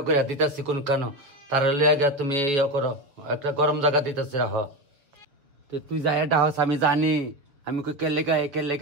করে দিতেছি কোন কেন তার লেগে তুমি ইয়ে করো, একটা গরম জায়গা দিতেছি রাহ। তো তুই যাই এটা হস আমি জানি, আমি কে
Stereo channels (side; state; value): left; late; 7.2 ms